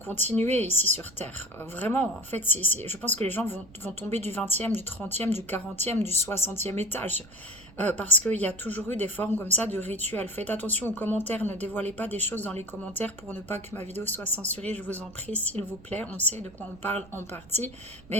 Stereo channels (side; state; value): right; noise; rumble, 22 dB below the sound